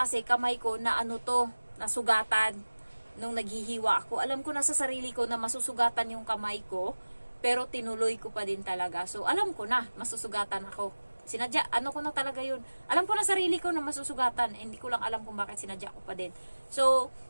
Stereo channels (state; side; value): inverted; both; correlation -1.00